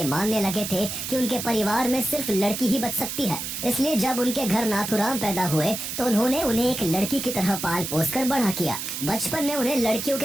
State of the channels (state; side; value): noise; right; hiss, 5 dB below the sound